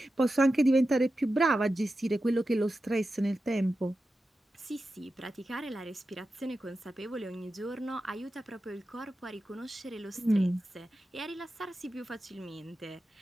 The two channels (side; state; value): both; normal; correlation 0.92